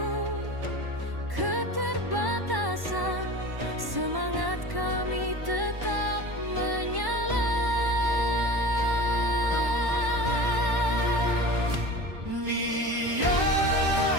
keterbatasan, semangat kami tetap menyala.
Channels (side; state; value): left; late; 1.1 ms